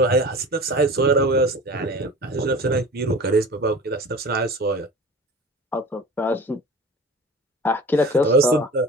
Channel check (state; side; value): normal; both; correlation 0.38